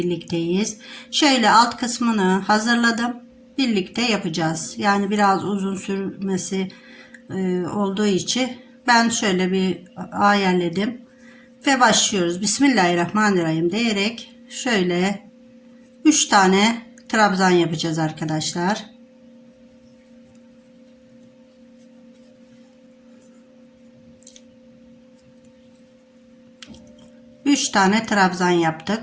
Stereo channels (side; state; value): both; identical; correlation 1.00